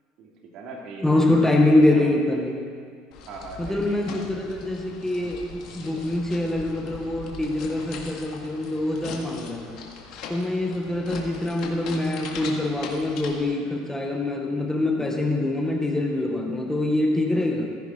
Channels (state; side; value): normal; both; correlation 0.82